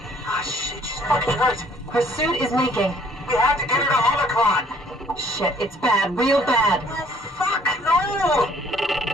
Ah, shit, she's fucking hurt. Her suit is leaking. We have to get her to Omicron. Shit, it's bad, real bad. Oh, fuck, no!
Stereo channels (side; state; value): both; normal; correlation 0.59